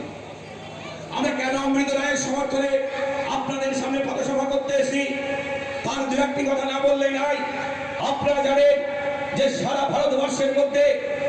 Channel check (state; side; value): identical; both; correlation 1.00